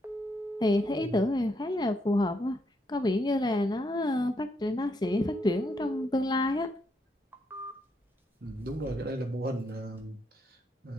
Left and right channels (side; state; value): both; normal; correlation 0.77